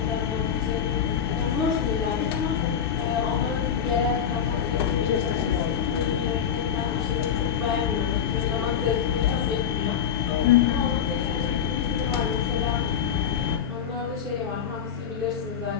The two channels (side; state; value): right; quieter; 8.2 dB